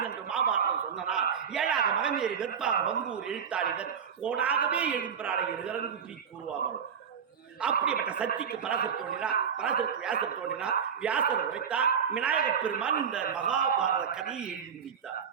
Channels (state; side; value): quieter; left; 7.3 dB